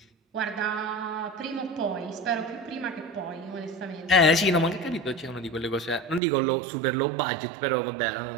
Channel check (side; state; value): left; drops out; at 6.2 s